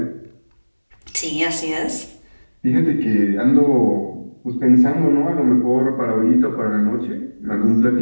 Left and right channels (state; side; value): inverted; both; correlation -1.00